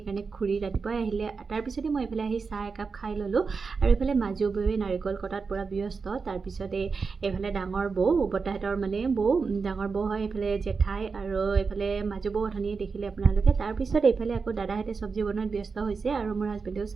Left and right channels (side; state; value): left; quieter; 4.9 dB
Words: খুৰী ৰাতিপুৱাই আহিলে। তাৰপিছতে মই এইফালে আহি চাহ একাপ খাই ল'লোঁ। আৰু এইফালে মাজু বৌৱে নাৰিকল কটাত পূৰা ব্যস্ত। তাৰপিছতে এইফালে ডাঙৰ বৌ, বৰ্তাহঁতৰ মানে বৌ, ডাঙৰ বৌ হয়, এইফালে জেঠাই, আৰু এইফালে মাজু বৌ অথনিয়ে দেখিলে আপোনালোকে। তাৰপিছত এইফালে আকৌ দাদাহঁতে চব্জি বনোৱাত ব্যস্ত হৈছে, আৰু মোৰ হাজবেণ্ডেও